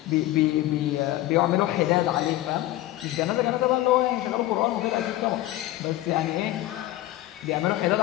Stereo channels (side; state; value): right; quieter; 15.7 dB